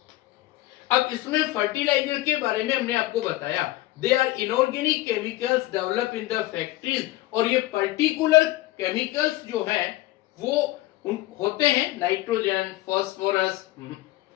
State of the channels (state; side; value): quieter; right; 17.6 dB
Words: अब इसमें फर्टिलाइजर के बारे में हमने आपको बताया. They are inorganic chemicals develop in the factories. और ये पर्टिकुलर केमिकल्स जो है वो होते हैं नाइट्रोजन,